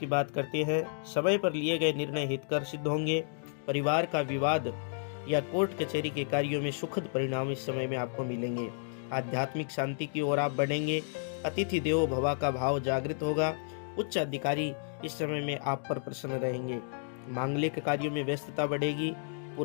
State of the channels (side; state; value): right; silent; digital silence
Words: बात करते हैं। समय पर लिए गए निर्णय हितकर सिद्ध होंगे। परिवार का विवाद या कोर्ट कचहरी के कार्यों में सुखद परिणाम इस समय में आपको मिलेंगे। आध्यात्मिक शांति की ओर आप बढ़ेंगे। अतिथि देवो भव का भाव जागृत होगा। उच्च अधिकारी इस समय में आप पर प्रसन्न रहेंगे। मांगलिक कार्यों में व्यस्तता बढ़ेगी।